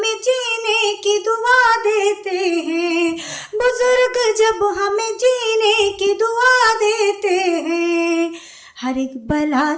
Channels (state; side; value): identical; both; correlation 1.00